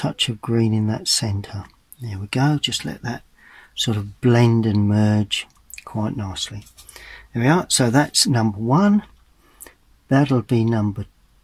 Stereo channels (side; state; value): both; identical; correlation 1.00